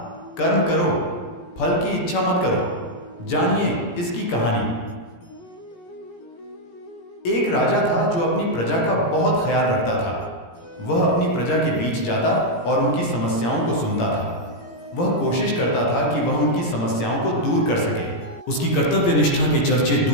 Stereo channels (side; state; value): right; late; 17 ms